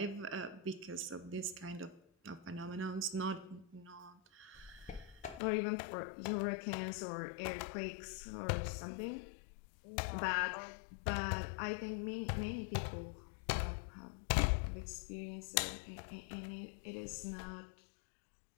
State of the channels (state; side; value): drops out; right; at 5.4 s